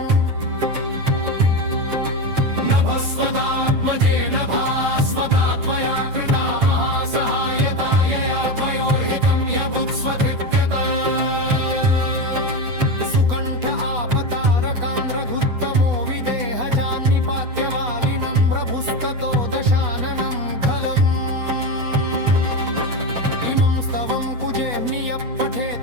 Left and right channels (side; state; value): left; late; 8.1 ms